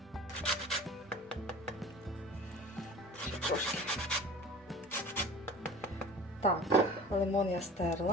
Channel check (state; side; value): normal; both; correlation 0.40